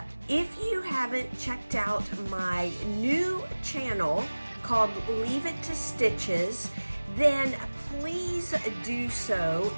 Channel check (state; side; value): inverted; both; correlation -1.00